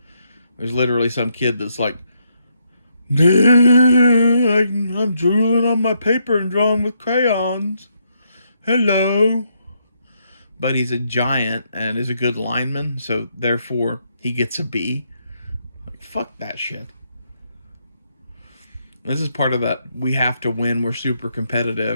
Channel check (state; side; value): inverted; both; correlation -0.77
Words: There's literally some kid that's like, I'm drooling on my paper and drawing with crayons. Hello. But he's a giant and is a good lineman, so therefore he gets a B. Like, fuck that shit. This is part of that we have to win, we're super